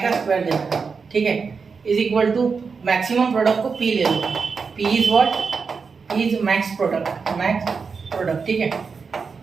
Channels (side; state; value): left; quieter; 5.2 dB